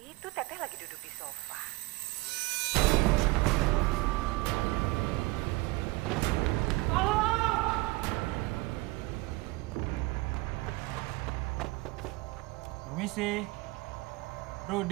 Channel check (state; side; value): quieter; left; 22.4 dB